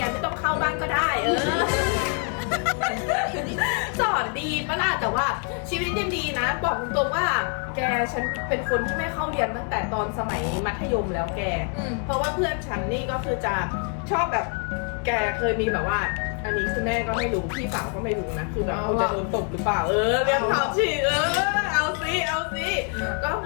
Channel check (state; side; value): quieter; right; 39.9 dB